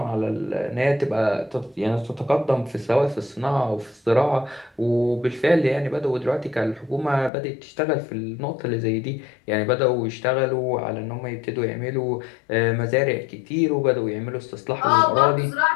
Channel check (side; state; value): right; drops out; at 7.3 s